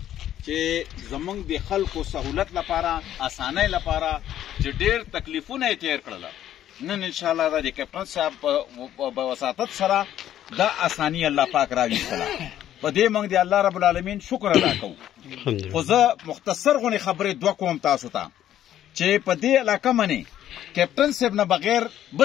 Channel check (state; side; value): quieter; right; 11.6 dB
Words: چې زمونږ د خلکو سهولت لپاره اسانۍ لپاره چې ډېر تکلیفونه یې تیر کړل نن انشاءالله د کیپټن صاحب په وساطت سره دا اساني الله پاک راویستله په دې موږ د الله رب العالمین شکر ادا کوو خو زه مختصر غونې خبرې دوه کوم تاسو ته چې په دې علاقه منې کیپټن صاحب نه بغیر